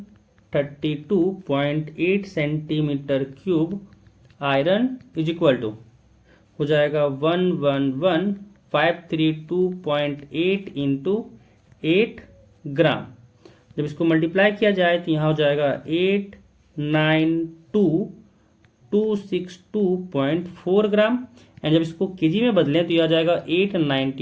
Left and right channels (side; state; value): both; identical; correlation 1.00